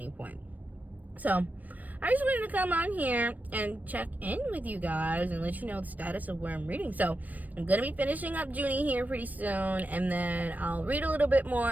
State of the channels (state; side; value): late; left; 0.081 ms